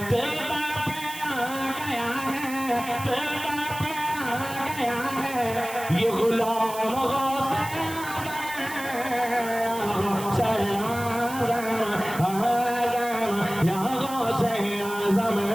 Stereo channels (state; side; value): noise; right; hiss, 12 dB below the sound